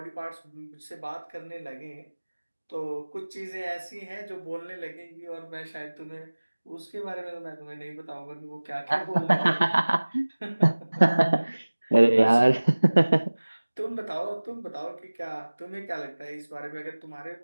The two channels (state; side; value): inverted; both; correlation -1.00